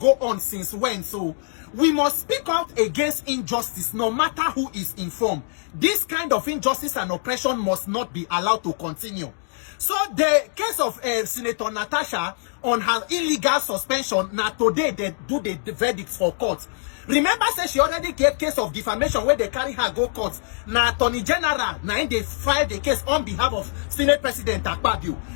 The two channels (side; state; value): right; silent; digital silence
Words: on since when? So we must speak out against injustice no matter who is informed. This kind of injustice and oppression must not be allowed to continue. So the case of Senator Natasha on her illegal suspension, now today they do the verdicts for court. Remember, say she already gave case of defamation where they carry her go court. Now Attorney General, now they filed the case on behalf of Senate President Akpabio.